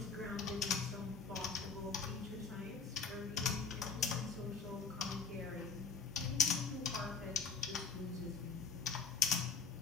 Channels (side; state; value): right; quieter; 5.2 dB